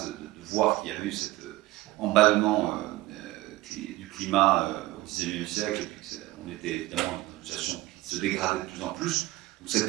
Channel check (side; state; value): left; quieter; 18.1 dB